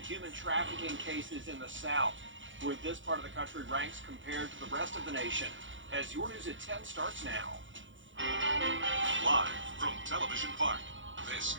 human trafficking cases in the South, where this part of the country ranks compared to the rest of the nation. As your News at 10 starts now. Live from Television Park, this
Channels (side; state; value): left; late; 0.56 ms